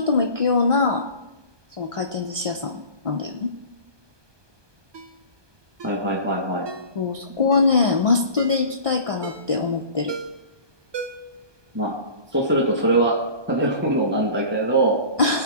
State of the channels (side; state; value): left; late; 1.2 ms